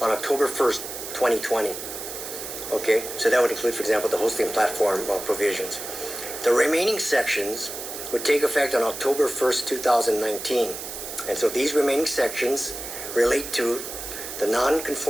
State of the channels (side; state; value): right; noise; hiss, 8 dB below the sound